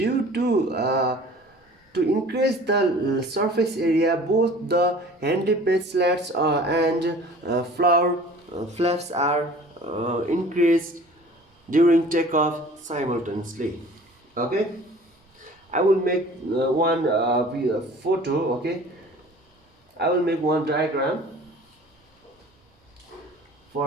to increase the surface area, both the handy page slats and flaps are increased during takeoff simultaneously, okay. I will make one photo, okay. I will make one diagram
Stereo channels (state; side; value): normal; both; correlation 0.46